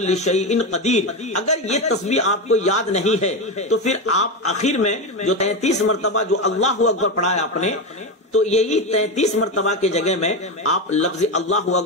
شیء قدیر، اگر یہ تسبیح آپ کو یاد نہیں ہے تو پھر آپ آخر میں جو 33 مرتبہ جو اللہ اکبر پڑھا ہے آپ نے، تو یہی 33 مرتبہ کے جگہ میں آپ لفظ اللہ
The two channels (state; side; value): normal; both; correlation 0.15